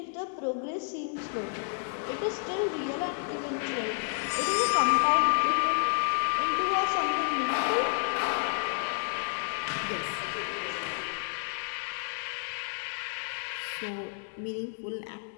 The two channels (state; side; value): silent; right; 57 dB below the other